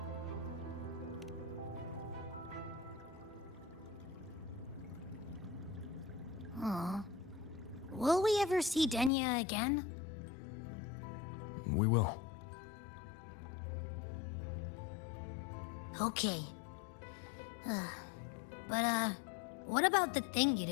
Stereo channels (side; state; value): right; drops out; at 9.1 s